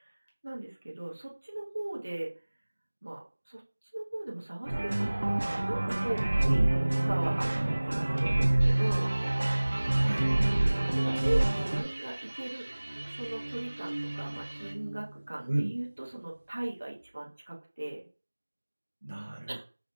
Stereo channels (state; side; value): inverted; both; correlation -1.00